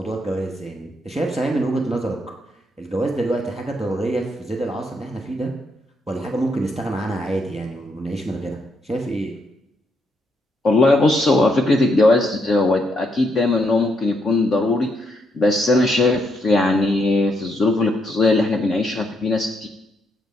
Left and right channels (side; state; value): both; normal; correlation 0.77